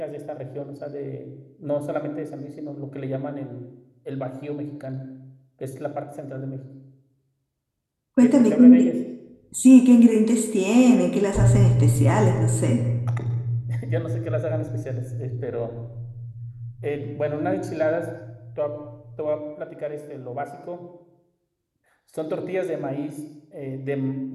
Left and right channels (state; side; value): identical; both; correlation 1.00